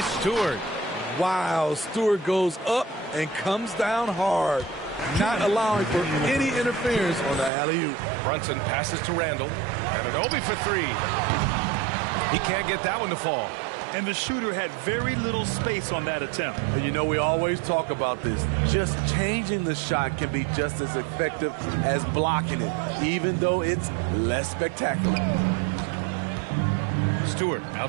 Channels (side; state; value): left; drops out; at 7.5 s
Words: Stewart. Wow, Stewart goes up and comes down hard, not allowing for any interference on the alley-oop. Brunson passes to Randall. And an Obi for 3. He can't get that one to fall. And the shooter had very little space on that attempt. And you know, we always talk about this. Just changing the shot can be just as effective as blocking it, even though it's less spectacular. Stewart